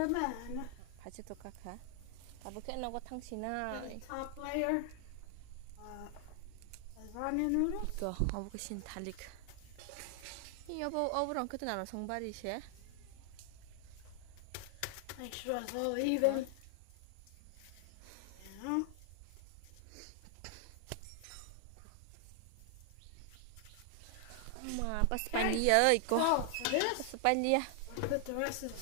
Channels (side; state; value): both; different; correlation 0.00